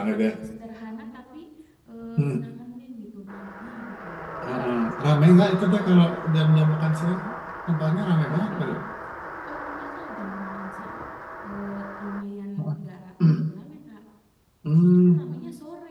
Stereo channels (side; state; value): both; identical; correlation 1.00